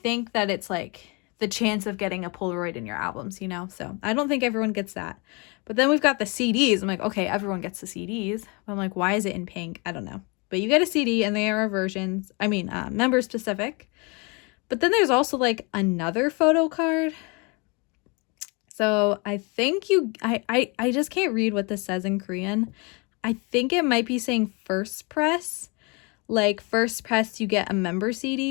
that it's like the chance of getting a Polaroid in your albums, you know, so I don't think everyone gets that. But then we've got the CDs. I'm like, okay, everyone gets the CDs. But I'm like, why is it in pink? I don't know. But you get a CD and there are versions, member specific. But then there's also like another photo card. So I think I just can't read what this says in Korean. I think it might be saying first press. Like first press, you get a member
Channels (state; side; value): quieter; right; 30.5 dB